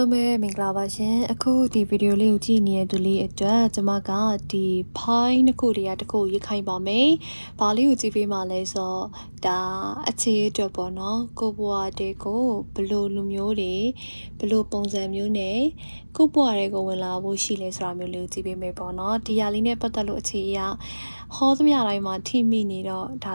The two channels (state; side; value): inverted; both; correlation -1.00